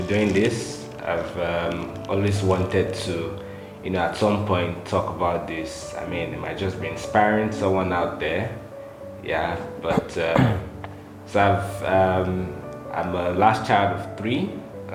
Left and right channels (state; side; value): identical; both; correlation 1.00